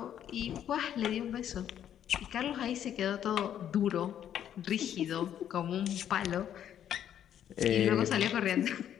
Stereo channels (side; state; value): right; quieter; 10.1 dB